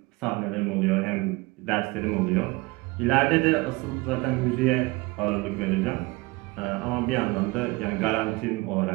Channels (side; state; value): left; quieter; 23.2 dB